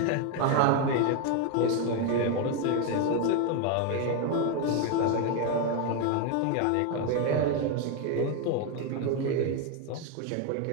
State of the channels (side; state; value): both; different; correlation 0.01